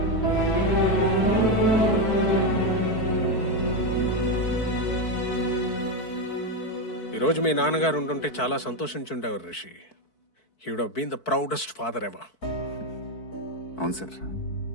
ఈరోజు మీ నాన్నగారు ఉంటుంటే చాలా సంతోషించుండేవారు Rishi. He would have been the proudest father ever. అవును సార్,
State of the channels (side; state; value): right; late; 4.6 ms